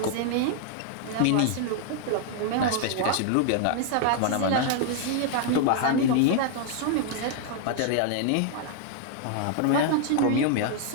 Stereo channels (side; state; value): both; different; correlation 0.00